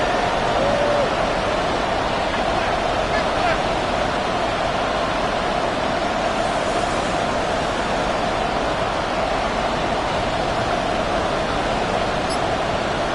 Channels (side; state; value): both; identical; correlation 1.00